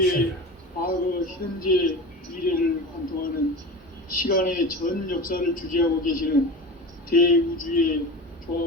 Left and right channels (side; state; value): both; normal; correlation 0.31